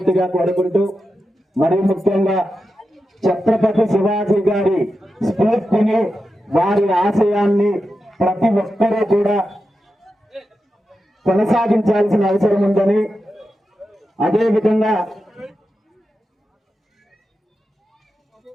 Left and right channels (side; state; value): both; normal; correlation 0.90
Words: కోరుకుంటూ, మరి ముఖ్యంగా ఛత్రపతి శివాజీ గారి స్ఫూర్తిని, వారి ఆశయాన్ని ప్రతి ఒక్కరూ కూడా కొనసాగించాల్సిన అవసరం ఉందని, అదేవిధంగా